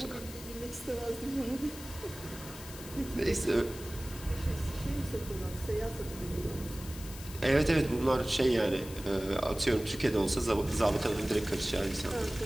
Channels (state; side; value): noise; left; hiss, 14 dB below the sound